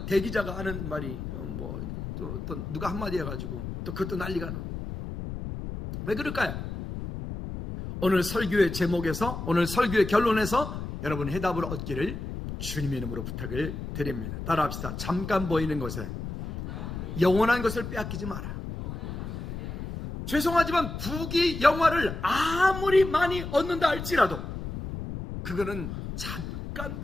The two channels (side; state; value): left; noise; rumble, 7 dB below the sound